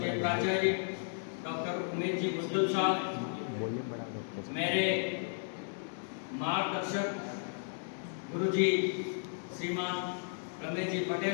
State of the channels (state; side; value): silent; right; digital silence